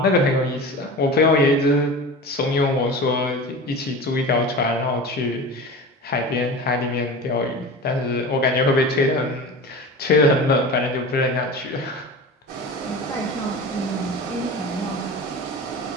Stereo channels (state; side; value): normal; both; correlation 0.32